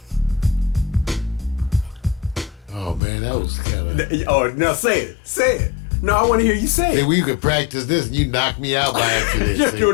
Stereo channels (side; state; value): right; drops out; at 3.0 s